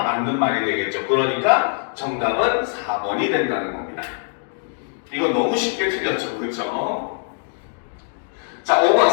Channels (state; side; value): silent; right; 64 dB below the other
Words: 맞는 말이 되겠죠. 그러니까 정답은 4번이 된다는 겁니다. 이거 너무 쉽게 틀렸죠. 그렇죠? 자, 5번.